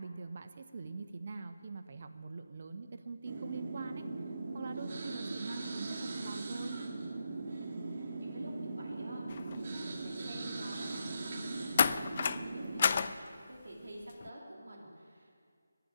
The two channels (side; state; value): both; inverted; correlation -0.84